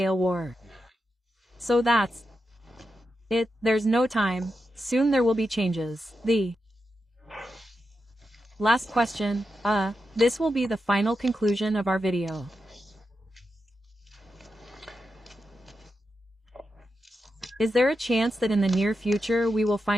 war. So that's it, there's no time, soon there will be changes. The last question, this will be the final conclusion of our video. Is there a chance that in the near future we will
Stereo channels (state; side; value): normal; both; correlation 0.88